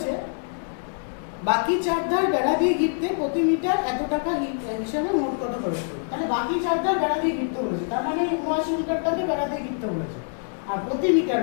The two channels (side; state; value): right; silent; 62 dB below the other